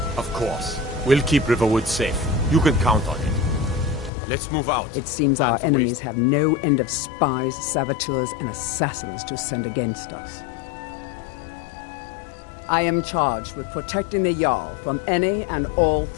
Of course. We'll keep Riverwood safe. You can count on it. Let's move out. It seems our enemies have no end of spies, saboteurs, and assassins to send against us. I am charged with protecting the Jarl from any and all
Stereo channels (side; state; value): right; drops out; at 4.1 s